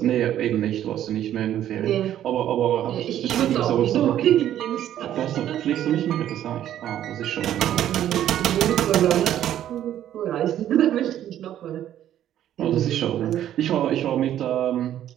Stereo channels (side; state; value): left; quieter; 11.5 dB